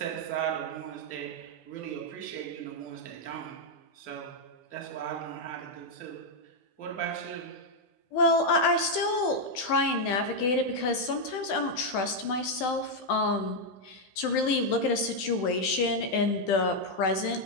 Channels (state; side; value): late; right; 15 ms